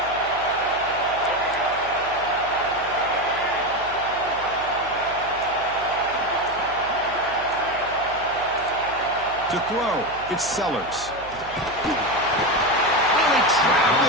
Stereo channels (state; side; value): noise; right; hum, 19 dB below the sound